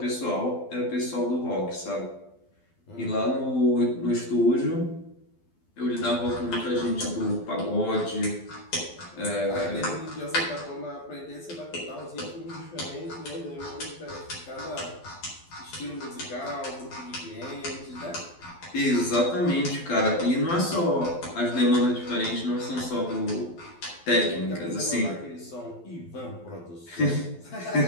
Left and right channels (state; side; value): late; right; 12 ms